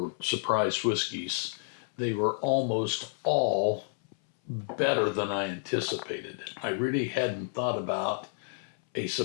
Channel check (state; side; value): silent; right; 58 dB below the other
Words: surprise whiskeys, they were almost all better than I anticipated. I really hadn't thought about a